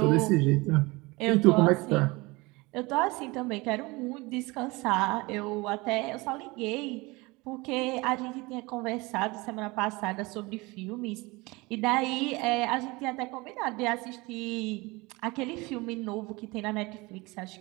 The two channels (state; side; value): quieter; left; 23.8 dB